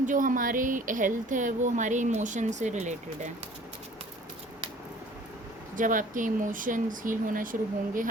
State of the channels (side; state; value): both; normal; correlation 0.51